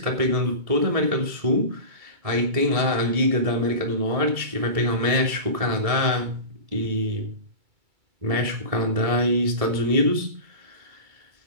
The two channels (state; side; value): late; left; 2.3 ms